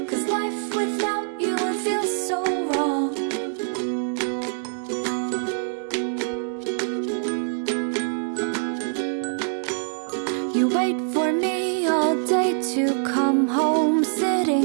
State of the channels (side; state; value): left; silent; 62 dB below the other